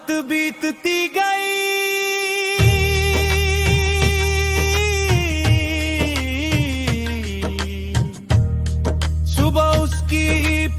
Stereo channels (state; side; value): identical; both; correlation 1.00